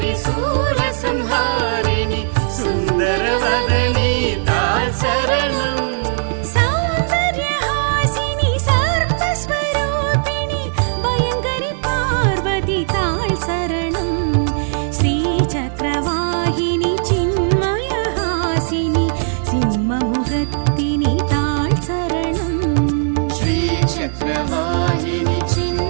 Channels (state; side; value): silent; left; digital silence